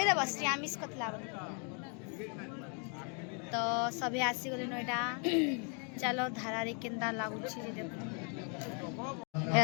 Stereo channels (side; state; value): right; quieter; 38.6 dB